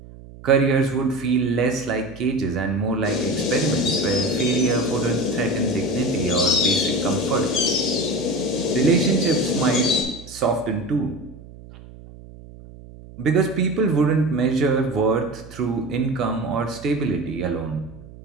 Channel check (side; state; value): right; noise; hum, 18 dB below the sound